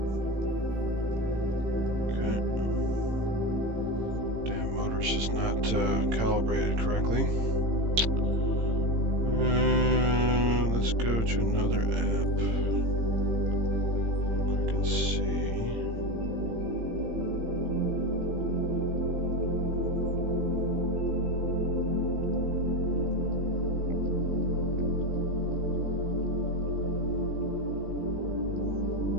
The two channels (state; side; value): late; left; 18 ms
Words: Okay. Damn motor's just not calibrated correctly. Let's go to another app. I can see.